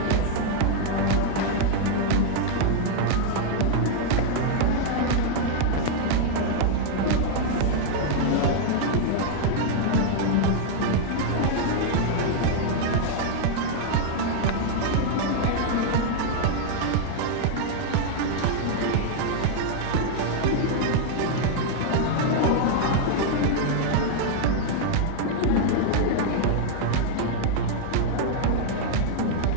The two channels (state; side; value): different; both; correlation 0.00